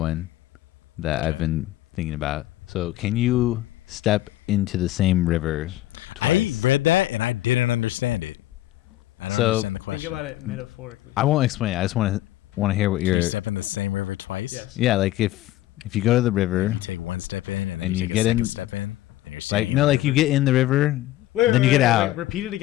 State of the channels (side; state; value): right; quieter; 15.3 dB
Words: that I've been thinking about. So, can you step into the same river twice? Read that and I didn't understand it. So, Think about it metaphorically. I won't explain it. I just want to hear what your Yes. yeah, like if you go to the river and you get in, like you get in the river, then you get out. Repeat it